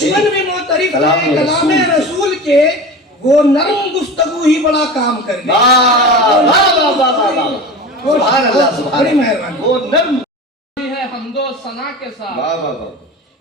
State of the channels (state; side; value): normal; both; correlation 0.32